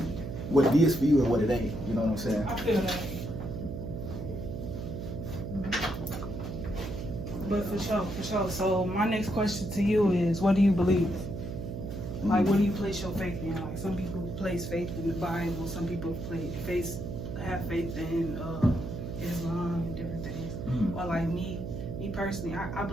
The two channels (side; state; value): right; noise; hum, 6 dB below the sound